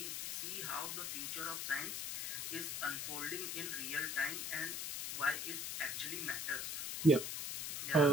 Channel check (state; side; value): noise; left; hiss, 3 dB below the sound